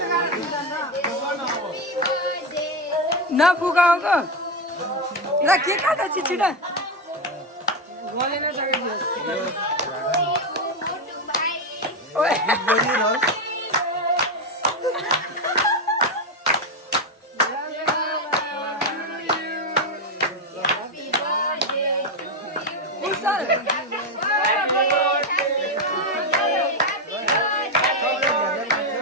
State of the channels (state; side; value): normal; both; correlation 0.09